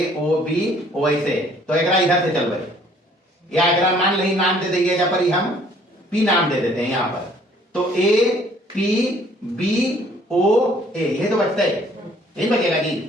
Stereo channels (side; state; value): both; normal; correlation 0.59